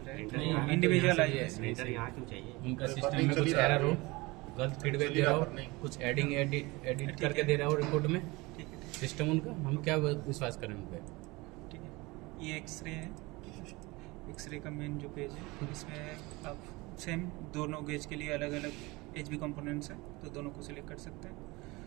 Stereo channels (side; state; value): left; quieter; 23.2 dB